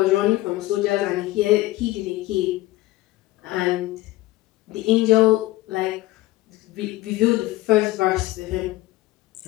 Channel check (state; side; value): quieter; right; 18.1 dB